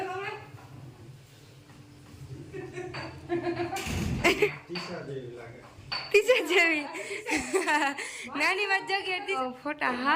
તમે? ટીચર જેવી નાની વાત જગ્યાએ ફોટા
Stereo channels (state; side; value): identical; both; correlation 1.00